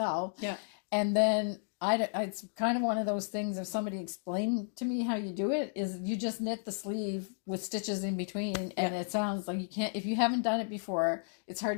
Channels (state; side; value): silent; right; digital silence